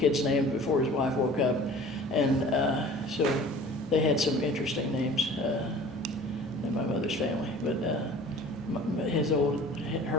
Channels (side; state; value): both; normal; correlation 0.45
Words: name before his wife woke up, and so they had some interesting names in my mother's family. But